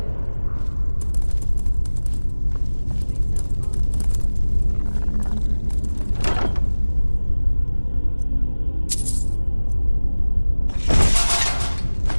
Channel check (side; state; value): both; inverted; correlation -1.00